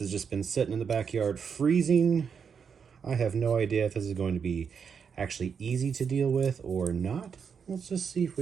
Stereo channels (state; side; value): quieter; left; 6.6 dB